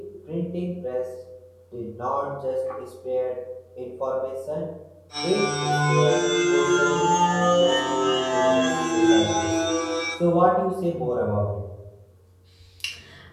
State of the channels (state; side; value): identical; both; correlation 1.00